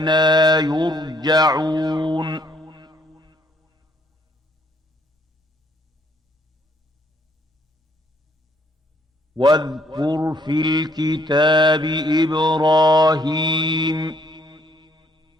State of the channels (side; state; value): both; normal; correlation 0.67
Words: يرجعون واذكر في الكتاب إبراهيم